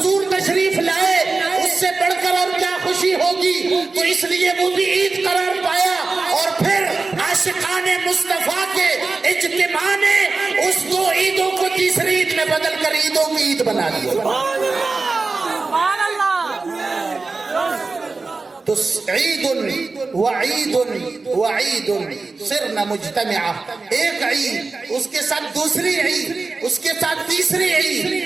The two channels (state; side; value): quieter; left; 3.9 dB